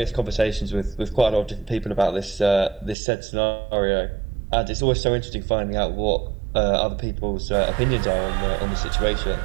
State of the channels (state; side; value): drops out; left; at 3.0 s